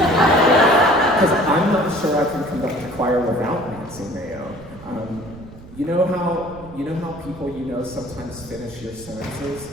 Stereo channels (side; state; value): right; noise; rumble, 18 dB below the sound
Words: I'm not sure I can conduct a choir without Nancy Mayo. You know how people sometimes finish your sentences?